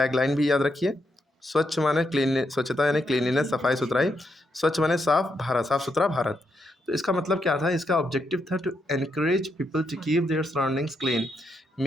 भी याद रखिए। स्वच्छ माने क्लीन, स्वच्छता यानी क्लीनलीनेस, सफाई सुथराई। स्वच्छ माने साफ भारत, साफ सुथरा भारत। तो इसका मतलब क्या था, इसका ऑब्जेक्टिव था to encourage people to keep their surroundings clean.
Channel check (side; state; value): both; normal; correlation 0.80